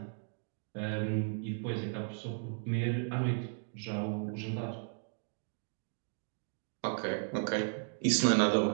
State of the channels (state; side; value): silent; left; digital silence